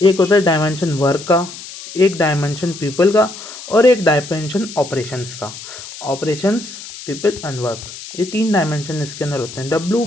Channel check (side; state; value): left; noise; hiss, 13 dB below the sound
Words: एक होता है डायमेंशन वर्क का, एक डायमेंशन पीपल का, और एक डायमेंशन ऑपरेशंस का। ऑपरेशंस, पीपल एंड वर्क, ये 3 डायमेंशन इसके अंदर होते हैं।